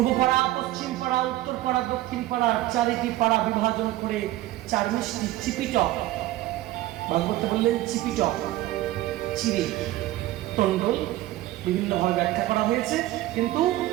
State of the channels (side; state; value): left; quieter; 15.7 dB